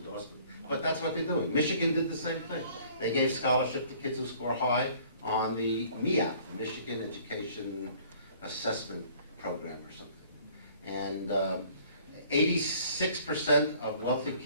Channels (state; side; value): inverted; both; correlation -0.55